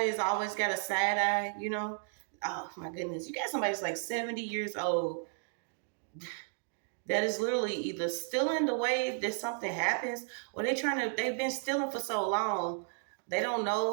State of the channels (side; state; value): left; silent; 55 dB below the other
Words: that's always got a side eye, you know. Oh my goodness. You got somebody that's like 70 years old that is literally either stealing the way that something happens, or they've been stealing for so long they don't